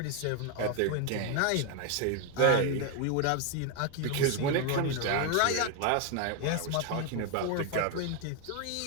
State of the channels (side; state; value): both; different; correlation 0.01